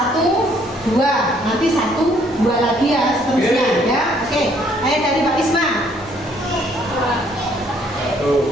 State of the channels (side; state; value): both; normal; correlation 0.64